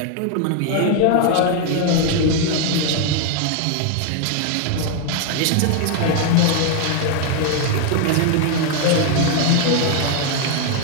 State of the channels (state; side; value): different; both; correlation 0.00